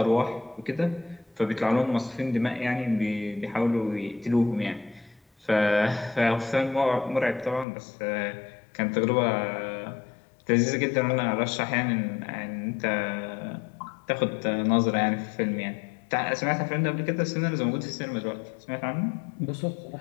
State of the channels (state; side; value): drops out; right; at 7.7 s